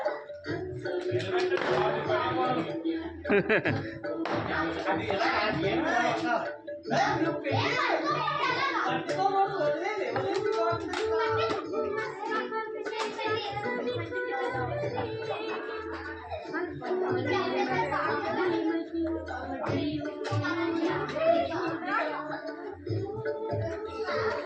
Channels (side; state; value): both; identical; correlation 1.00